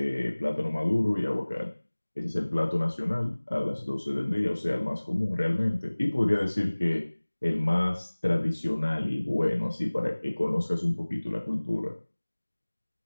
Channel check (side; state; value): both; inverted; correlation -1.00